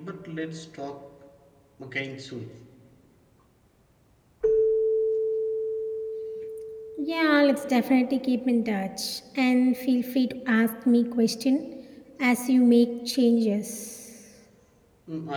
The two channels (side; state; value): both; identical; correlation 1.00